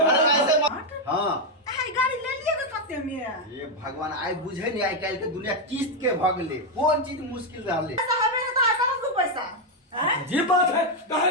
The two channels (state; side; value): normal; both; correlation 0.02